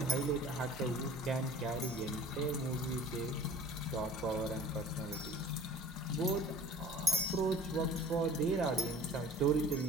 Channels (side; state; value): both; normal; correlation 0.44